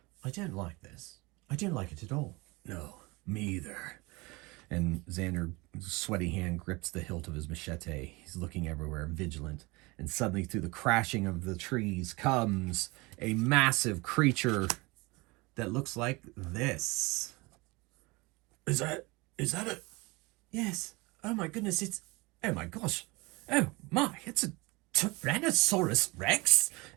I don't like this. I don't like it at all. No, me either. And Xander's sweaty hand grips the hilt of his machete. He's looking everywhere, vigilant. And suddenly, through the crashing of the trees, comes a massive creature that looks like this. Is that a... Yes. Oh my goodness, oh my gosh. Oh my, it's a Tyrannosaurus Rex.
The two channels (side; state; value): left; quieter; 24.6 dB